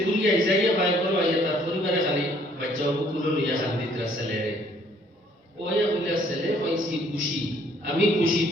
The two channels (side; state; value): both; normal; correlation 0.62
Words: গুলিয়া যাইয়া বাই করো আইয়া তার পরিবারে খালি বাচ্চা কুকুলো লইয়া খান দিতরা ছেলেরে ও আইয়া বলিয়া ছেলে পাইছি খুশি আমি খুশি